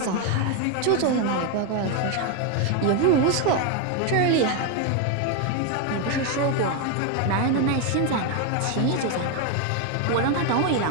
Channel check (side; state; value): both; different; correlation 0.02